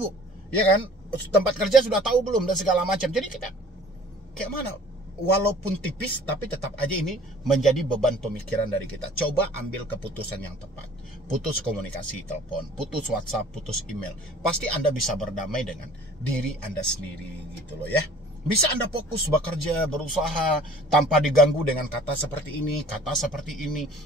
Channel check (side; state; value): both; normal; correlation 0.49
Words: Ya kan, tempat kerja sudah tahu belum dan segala macam. Jadi kita kayak mana? Walaupun tipis, tapi tetap aja ini menjadi beban pemikiran dari kita. Coba ambil keputusan yang tepat. Putus komunikasi telepon, putus WhatsApp, putus email. Pasti Anda bisa berdamai dengan diri Anda sendiri gitu loh ya. Bisa Anda fokus bekerja, berusaha tanpa diganggu dengan kata seperti ini, kata seperti ini.